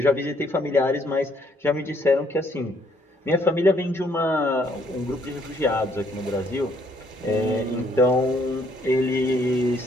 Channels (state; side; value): normal; both; correlation 0.67